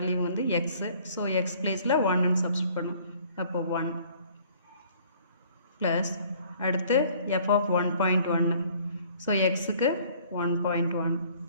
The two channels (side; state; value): both; inverted; correlation -0.57